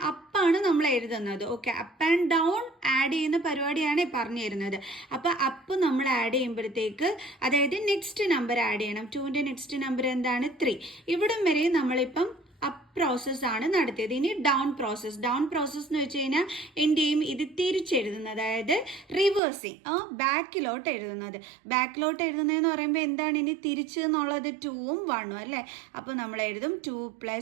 അപ്പാണ് നമ്മൾ എഴുതുന്നത്. Okay, up and down add ചെയ്യുന്ന പരിപാടിയാണ് പറഞ്ഞു തരുന്നത്. അപ്പോൾ അപ്പ് നമ്മൾ ആഡ് ചെയ്യുമ്പോഴത്തേക്ക്, അതായത് നെക്സ്റ്റ് നമ്പർ ആഡ് ചെയ്യണം. 2ന്റെ നെക്സ്റ്റ് നമ്പർ എന്താണ് 3. ഇവിടം വരെ നമ്മളിപ്പം അപ്പ് പ്രോസസ് ആണ് നടത്തിയത്. ഇനി ഡൗൺ പ്രോസസ് എന്ന് വെച്ച് കഴിഞ്ഞാൽ എന്ത് ചെയ്യും, ഇത് തിരിച്ചെഴുതുന്നത്, അതായത് റിവേഴ്സിങ്, ബാക്കിലോട്ട് എഴുതുന്നതെന്ന് പറയുമ്പോൾ എന്താണ്, ഇനി തിരിച്ച് എന്നുള്ളത് 2ഉം 1ഉം അല്ലേ. അപ്പോൾ നമ്മൾ എഴുതും 2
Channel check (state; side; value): drops out; left; at 19.4 s